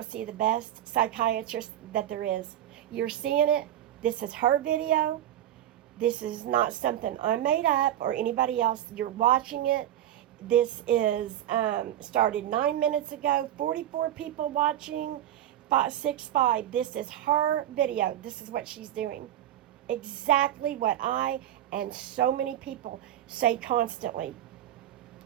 see the best psychiatrist that there is. You're seeing it. This is her video. This is not something I made up or anybody else. You're watching it. This is started 9 minutes ago. 44 people watching. 565. This is her video. This is what she's doing. Exactly what I and so many people say constantly.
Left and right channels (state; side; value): quieter; left; 12.0 dB